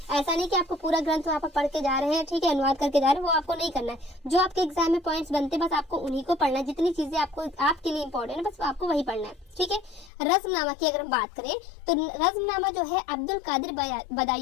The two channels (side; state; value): right; drops out; at 10.1 s